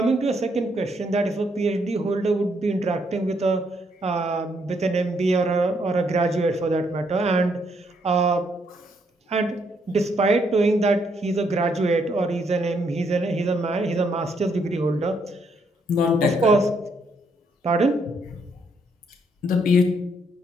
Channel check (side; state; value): both; normal; correlation 0.73